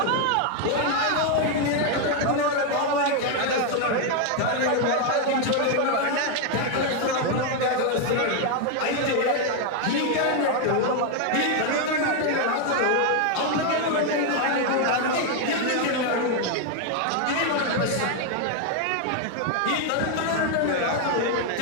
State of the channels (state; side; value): different; both; correlation 0.01